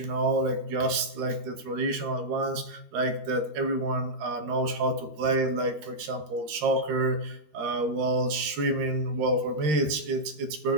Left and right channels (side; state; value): left; late; 13 ms